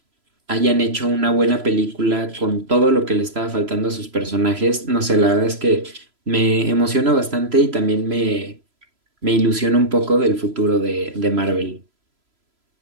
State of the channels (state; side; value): late; left; 3.0 ms